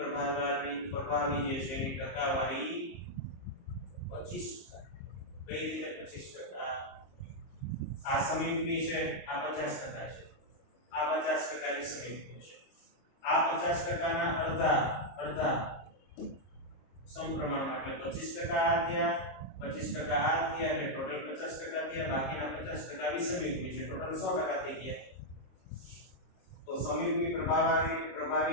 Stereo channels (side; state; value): right; late; 23 ms